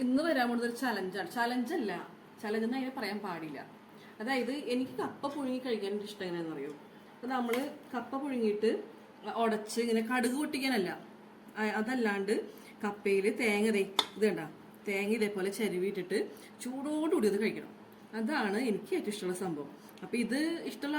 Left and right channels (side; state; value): both; identical; correlation 1.00